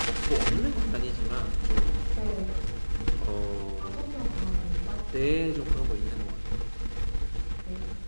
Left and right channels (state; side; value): inverted; both; correlation -1.00